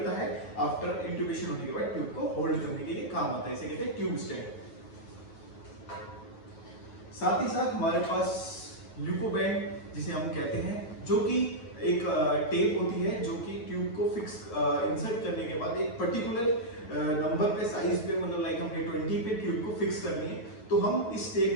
है। आफ्टर इंट्यूबेशन होने के बाद ट्यूब को होल्ड करने के लिए काम आता है, इसे कहते हैं ट्यूब स्टैंड। साथ ही साथ हमारे पास ल्यूकोबैंड जिसे हम कहते हैं, जो कि एक टेप होती है जो कि ट्यूब को फिक्स इंसर्ट करने के बाद एक पर्टिकुलर नंबर पे, साइज पे, मतलब लाइक हमने 20 पे ट्यूब को फिक्स करनी है तो हम इस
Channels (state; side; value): late; right; 9.2 ms